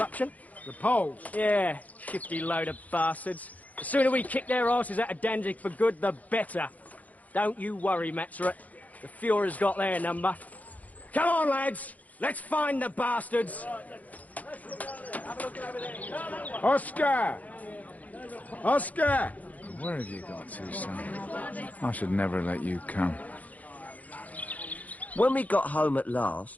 The Poles? Yeah, shifty load of bastards. The sooner we kick their asses out of Danzig for good, the better. Don't you worry, Maxrut. The Fuhrer's got their number. Come on, lads. Let's find the bastards. Oscar! Oscar! Where have you got to, son? I should never let you come. When we got home at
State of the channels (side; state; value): right; late; 0.075 ms